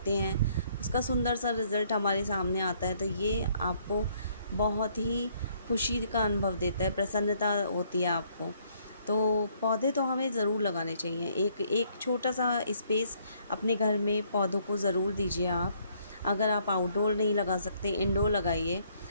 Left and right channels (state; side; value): inverted; both; correlation -0.66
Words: हैं, उसका सुंदर सा रिज़ल्ट हमारे सामने आता है, तो ये आपको बहुत ही खुशी का अनुभव देता है, प्रसन्नता होती है आपको। तो पौधे तो हमें ज़रूर लगाने चाहिए। एक एक छोटा सा स्पेस अपने घर में पौधों को ज़रूर दीजिए आप। अगर आप आउटडोर नहीं लगा सकते, इंडोर लगाइए।